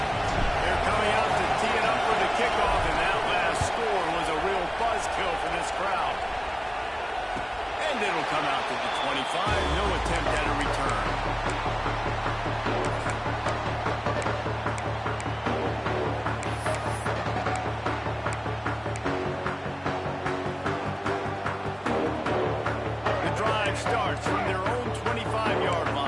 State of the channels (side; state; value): both; identical; correlation 1.00